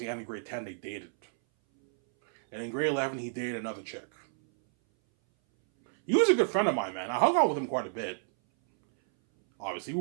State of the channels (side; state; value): left; silent; 58 dB below the other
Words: end of grade 10, they dated. And in grade 11, he dated another chick. He was a good friend of mine, man. I hung out with him quite a bit. Obviously,